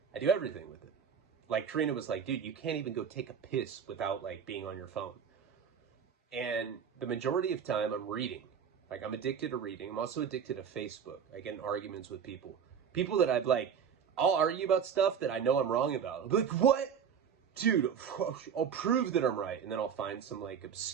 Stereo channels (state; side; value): quieter; left; 7.4 dB